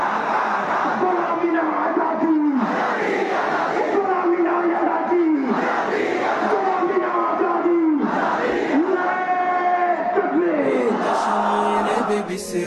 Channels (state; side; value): identical; both; correlation 1.00